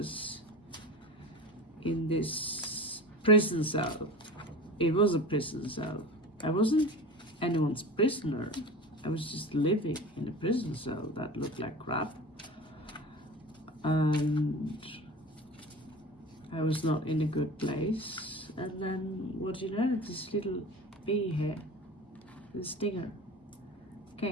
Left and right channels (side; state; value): both; normal; correlation 0.34